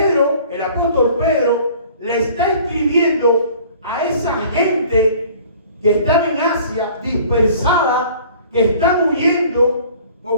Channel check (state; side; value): inverted; both; correlation -0.50